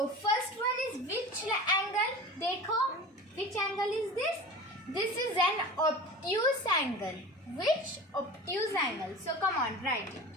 first one is which angle? Dekho, which angle is this? This is an obtuse angle. Which obtuse angle? So come on, write it.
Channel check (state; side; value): normal; both; correlation 0.35